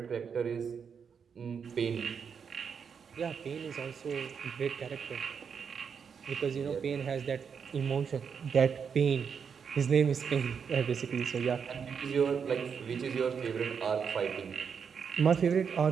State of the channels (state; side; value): quieter; left; 6.6 dB